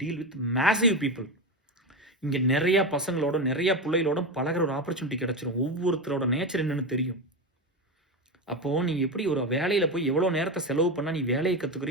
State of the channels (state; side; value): normal; both; correlation 0.17